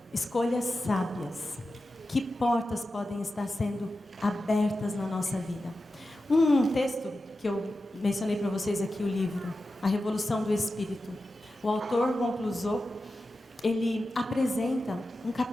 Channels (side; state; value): both; normal; correlation 0.92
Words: escolhas sábias. Que portas podem estar sendo abertas na nossa vida? Um texto que eu mencionei para vocês aqui, o livro A Revolução do Espírito. O autor, Ron Clusot, ele apresenta um